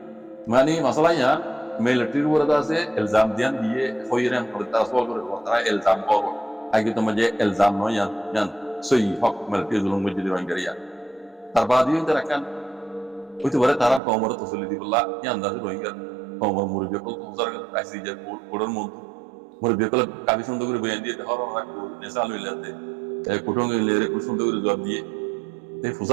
মানে মাসালা ইয়ান মিলিটারির ওরা আছে ইলজাম দিয়ান দিয়ে হইরেন করে তাসওয়াল করে তারা ইলজাম করব আগে তো মাঝে ইলজাম নয় ইয়ান সই হক মিলিটারি জুলুম মজদি রোহিঙ্গারিয়া তার বাদিও তারা কান হইতে পারে তারা কমর তসলি দিবল্লা এই আন্দাজে রোহিঙ্গা কমর মুরব্বী কল তুজার আইসি যে কোডর মধ্যে মুরব্বী কল কাবি সুন্দর করে বয়ান দিয়ে হর হর নেশা লইলাতে কুটুং লেরে খুব সুন্দর করে জবাব দিয়ে এই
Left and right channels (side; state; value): left; drops out; at 14.0 s